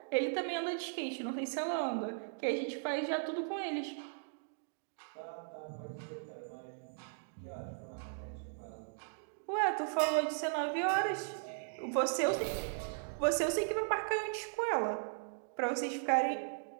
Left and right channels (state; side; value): silent; left; digital silence